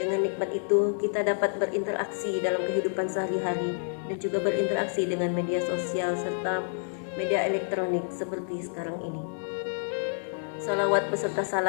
nikmat itu kita dapat berinteraksi dalam kehidupan sehari-hari dan juga berinteraksi dengan media sosial serta media elektronik seperti sekarang ini. Salawat beserta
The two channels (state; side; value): silent; right; 59 dB below the other